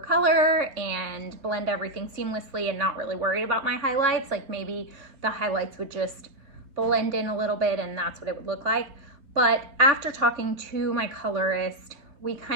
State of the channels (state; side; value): late; left; 3.3 ms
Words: and blend everything seamlessly and not really worry about my highlights. Like maybe the highlights would just blend in a little bit and that's what it would look like. But after talking to my colorist, we